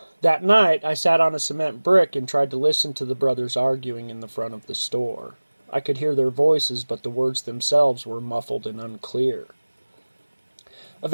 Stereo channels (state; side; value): inverted; both; correlation -1.00